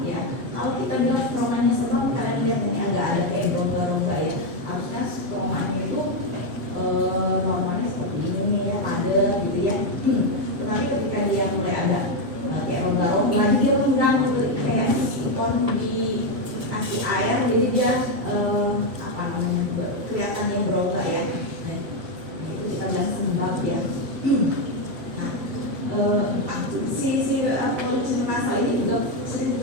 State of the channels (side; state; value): left; late; 7.4 ms